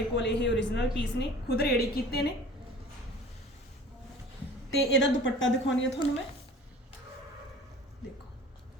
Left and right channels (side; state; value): both; normal; correlation 0.44